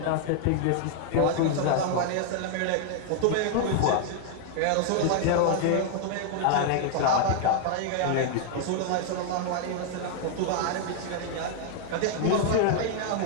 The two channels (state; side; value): different; both; correlation 0.00